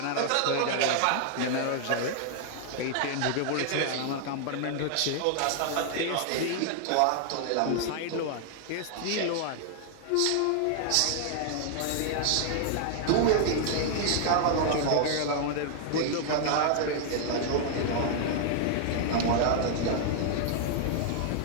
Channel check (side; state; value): both; different; correlation 0.00